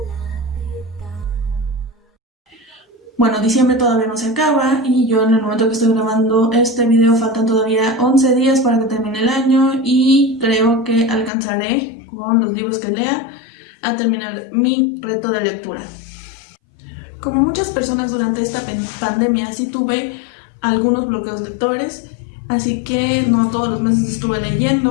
Bueno, diciembre todavía no se acaba y yo en el momento que estoy grabando este video faltan todavía 11 días para que termine el año y creo que alcanzaré con los libros que lea a terminar mi reto de lectura. Como muchas personas durante esta pandemia sí tuve algunos bloqueos lectores, así que no todos los meses estuve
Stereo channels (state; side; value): drops out; right; at 11.3 s